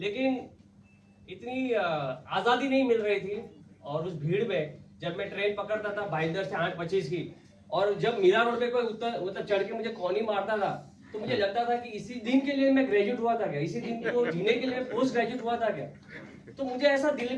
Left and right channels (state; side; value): identical; both; correlation 1.00